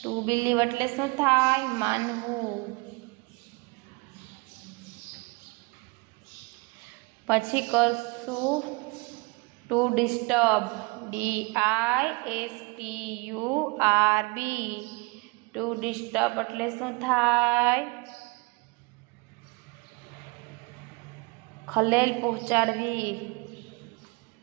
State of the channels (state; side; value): quieter; left; 28.0 dB